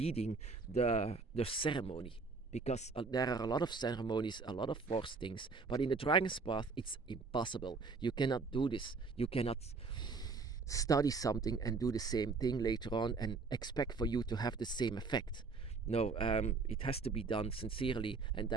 the ceremony, because there are a lot of ceremonies, a lot of forced things, but in the dragon's path it's impossible. You cannot do this. You cannot study something and do the same thing later on and expect for you to have the same effect. No, it has to be done sincerely, and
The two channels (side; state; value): left; quieter; 4.4 dB